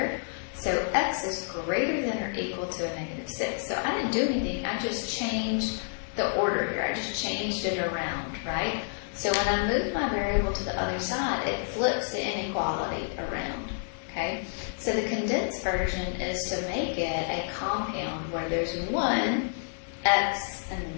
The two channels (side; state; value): right; silent; digital silence